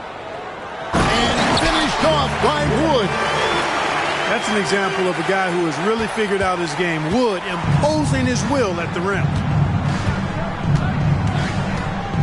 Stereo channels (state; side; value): identical; both; correlation 1.00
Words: And finished off by Wood. That's an example of a guy who has really figured out his game. Wood imposing his will at the rim.